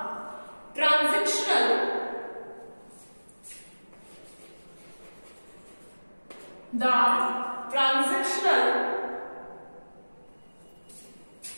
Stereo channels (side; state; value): both; inverted; correlation -1.00